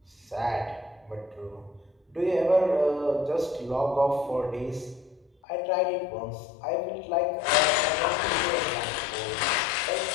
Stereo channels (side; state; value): right; drops out; at 5.3 s